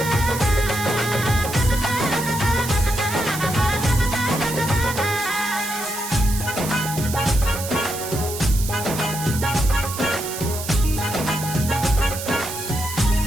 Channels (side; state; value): right; noise; hiss, 8 dB below the sound